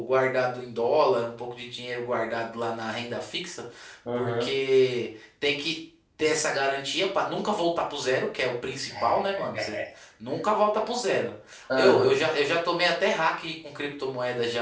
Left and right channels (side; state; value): both; identical; correlation 1.00